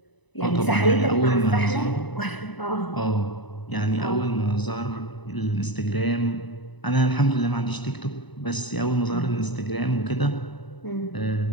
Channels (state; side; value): late; right; 1.0 ms